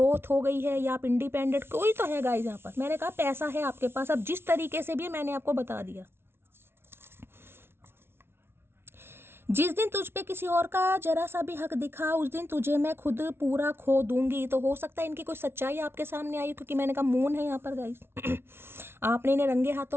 हो गई है या आप इंडिपेंडेंट, कोई तो है गाइस यहाँ पर। मैंने कहा पैसा है आपके पास, अब जिस तरीके से भी मैंने आपको बता दिया। जिस दिन तुझ पे किसी और का जरा सा भी हक दिखा उस दिन तुझे मैं खुद पूरा खो दूंगी। तो हो सकता है इनकी कोई सच्चाई आपके सामने आई, क्योंकि मैंने कहा मून है यहाँ पर गाइस। आपने इन्हें रंगे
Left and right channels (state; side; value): late; left; 0.12 ms